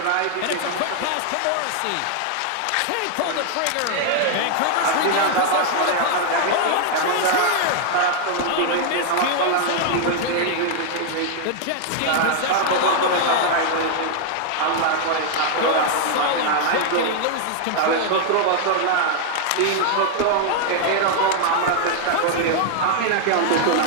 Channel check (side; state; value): both; different; correlation 0.00